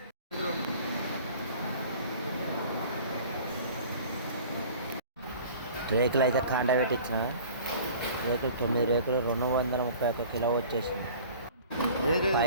రేకులు అయితే కాండ పెట్టించిన. రేకులు 9 రేకులు 231 కిలో వచ్చేసింది.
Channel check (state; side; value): inverted; both; correlation -0.45